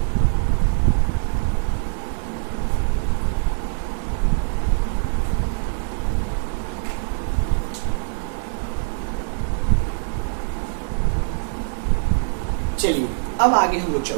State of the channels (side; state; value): left; silent; digital silence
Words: चलिए अब आगे हम लोग